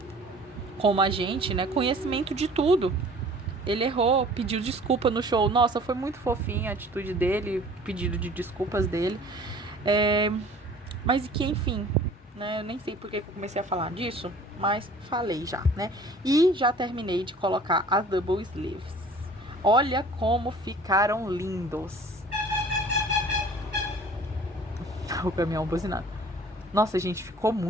como a gente, né, conhecimento de tudo. Ele errou, pediu desculpa no show. Nossa, foi muito fofinha a atitude dele, pedido de desculpas dele. Mas que, enfim, né, eu nem sei porque que eu comecei a falar disso, mas falei já, né? E já terminei de colocar as double sleeves. Olha como ficaram lindos. O caminhão buzinado. Nossa, gente, ficou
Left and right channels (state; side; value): normal; both; correlation 0.48